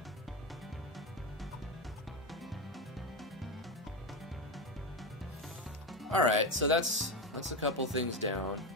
Alright, so that's a couple things down.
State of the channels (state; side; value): normal; both; correlation 0.14